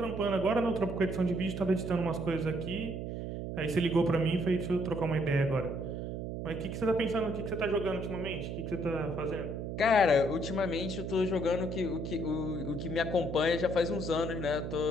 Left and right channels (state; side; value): noise; right; hum, 5 dB below the sound